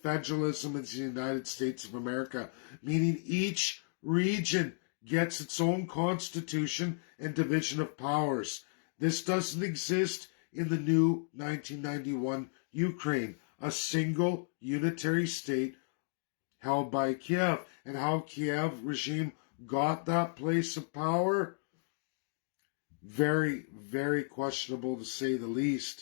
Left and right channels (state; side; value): silent; right; digital silence